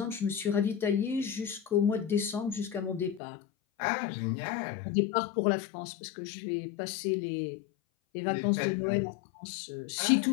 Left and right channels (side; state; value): right; drops out; at 3.2 s